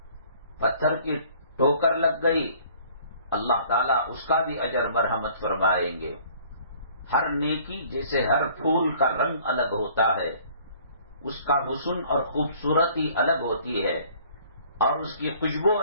پتھر کی ٹوکر لگ گئی، اللہ تعالیٰ اس کا بھی اجر مرحمت فرمائیں گے۔ ہر نیکی جیسے ہر پھول کا رنگ الگ ہوتا ہے، اس کا حسن اور خوبصورتی الگ ہوتی ہے اور اس کی خوشبو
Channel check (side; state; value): both; inverted; correlation -0.55